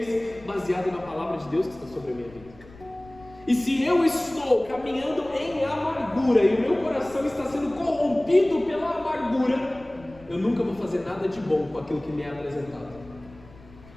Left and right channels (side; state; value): left; noise; rumble, 22 dB below the sound